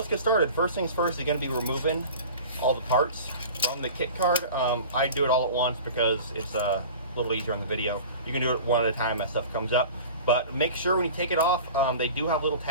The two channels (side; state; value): both; inverted; correlation -0.38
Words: get started. First things first, you're going to be removing all the parts from the kit card. I do it all at once because it's a little easier on the video. You can do it one at a time as stuff comes up. But make sure when you take it off, they do have little